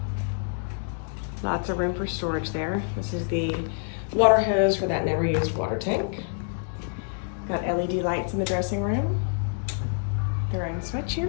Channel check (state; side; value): silent; right; 57 dB below the other